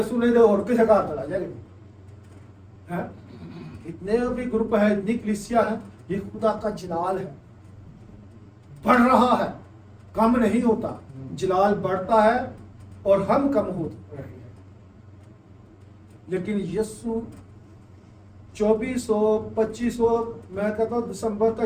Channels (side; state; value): both; identical; correlation 1.00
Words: نے تو اور کسی کا چلا جائے گا. اتنے بھی گروپ ہے، اتنی کلیسیا ہے، یہ خدا کا جلال ہے، بڑھ رہا ہے، کم نہیں ہوتا. جلال بڑھتا ہے اور ہم کم ہوتے رہے ہیں. لیکن یسوع 2400 میں کہتا ہوں دسمبر کا